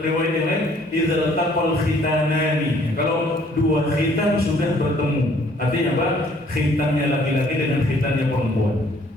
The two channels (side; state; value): both; normal; correlation 0.60